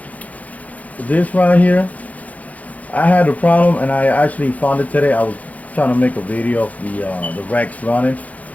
This right here, I had a problem, and I actually found it today. I was trying to make a video of the Rex running,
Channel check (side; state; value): right; late; 0.072 ms